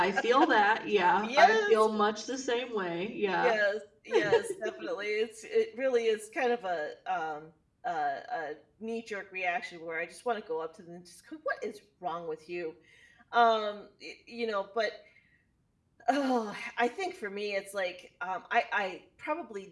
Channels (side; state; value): both; identical; correlation 1.00